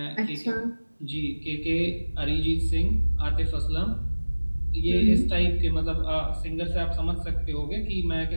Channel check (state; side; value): inverted; both; correlation -1.00